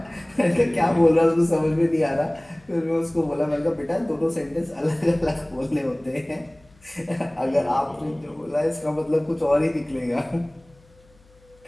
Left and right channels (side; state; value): left; noise; hum, 30 dB below the sound